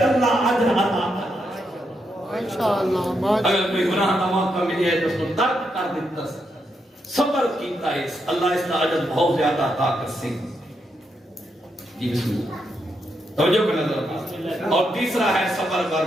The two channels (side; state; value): both; normal; correlation 0.81